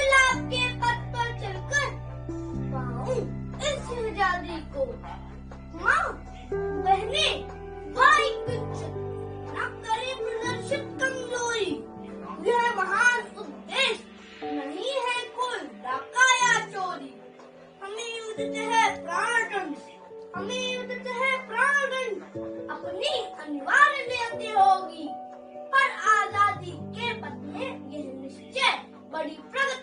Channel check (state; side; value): identical; both; correlation 1.00